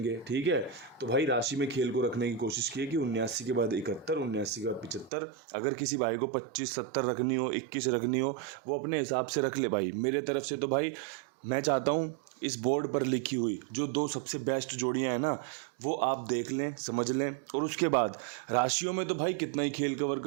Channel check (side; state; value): left; drops out; at 5.1 s